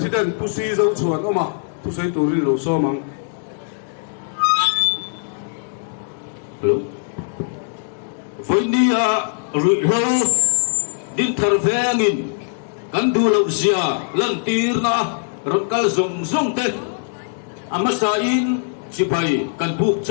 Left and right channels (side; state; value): right; silent; digital silence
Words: tu si zo chuan oma tu sei tu ri lo so mang hello với đi rụi lâu din thar vengin kan du lo zia lan tir na rot kal zong zong te amasa in chipai kan buk